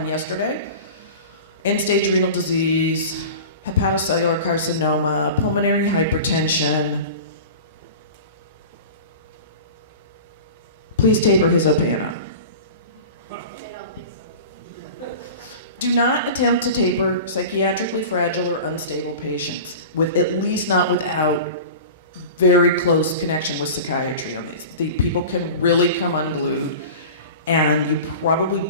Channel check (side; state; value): both; inverted; correlation -0.35